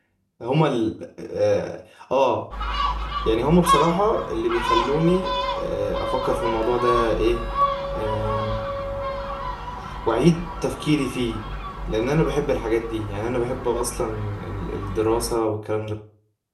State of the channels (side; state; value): both; identical; correlation 1.00